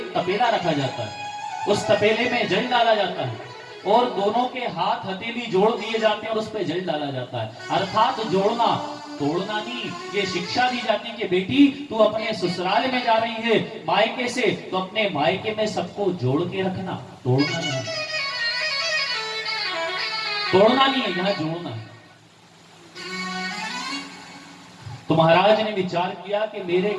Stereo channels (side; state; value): both; identical; correlation 1.00